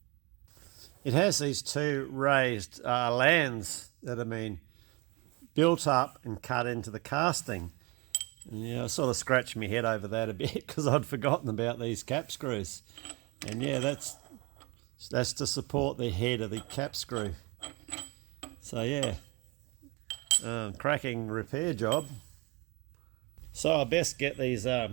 It has these two raised lands that have been built up and cut into the casting. And I sort of scratched my head over that a bit because I'd forgotten about these cap screws. And that's to support the head of the cap screw. So cracking repair job. So I best get these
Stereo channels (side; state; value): left; quieter; 26.8 dB